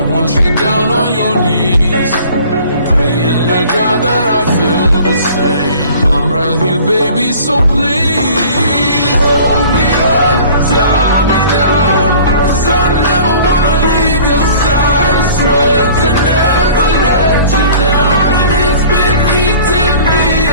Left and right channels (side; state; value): both; inverted; correlation -0.48